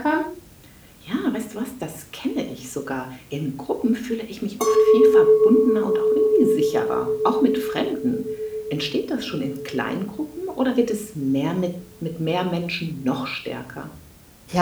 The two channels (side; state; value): both; identical; correlation 1.00